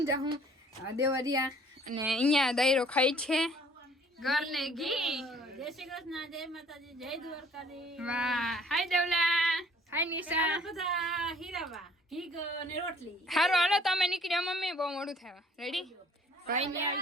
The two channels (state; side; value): normal; both; correlation 0.57